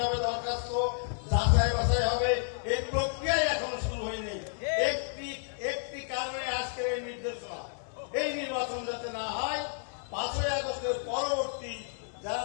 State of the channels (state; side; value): silent; right; 57 dB below the other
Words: হবে, দরখাস্ত যাচাই বাছাই হবে, এই প্রক্রিয়াই এখনো শুরু হয়নি। একটি কারণে আজকের এই নির্দেশনা, এই নির্বাচন যাতে না হয়। 5ই আগস্টের পরবর্তী যারা